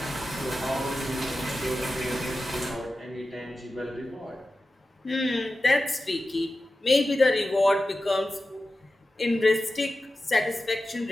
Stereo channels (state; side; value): normal; both; correlation 0.93